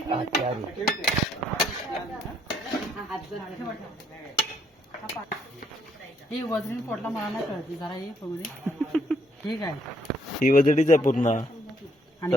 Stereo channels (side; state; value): both; normal; correlation 0.70